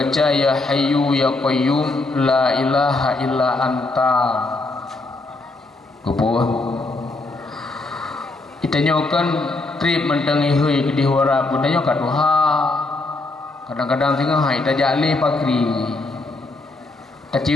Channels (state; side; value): quieter; right; 3.1 dB